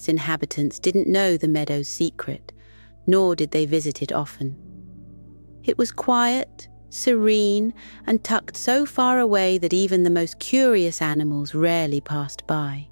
inhabitants didn't know the meadow's secret, nor did they visit it often. It was quiet, serene, and tucked so far away that even the most curious animals rarely passed by.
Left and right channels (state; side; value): inverted; both; correlation -1.00